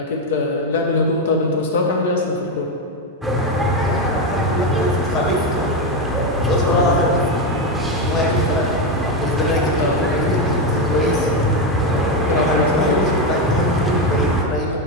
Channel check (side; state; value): both; normal; correlation 0.09